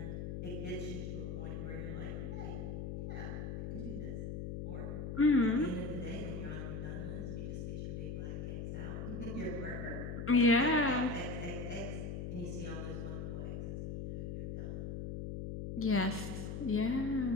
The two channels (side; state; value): left; noise; hum, 4 dB below the sound